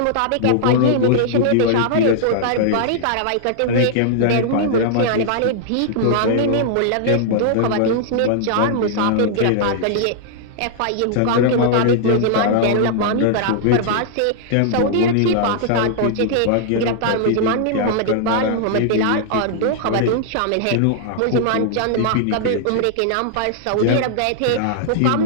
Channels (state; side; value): different; both; correlation -0.01